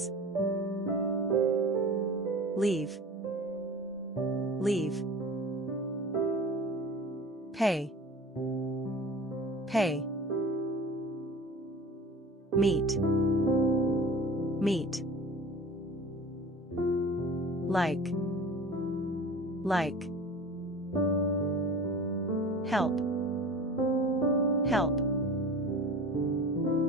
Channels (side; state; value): both; normal; correlation 0.38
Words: Leave, leave. Pay, pay. Meet, meet. Like, help, help.